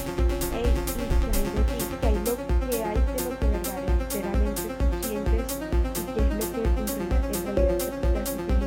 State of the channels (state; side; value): identical; both; correlation 1.00